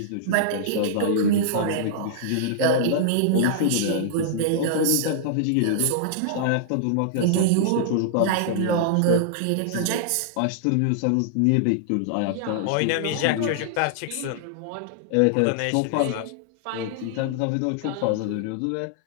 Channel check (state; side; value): different; both; correlation -0.01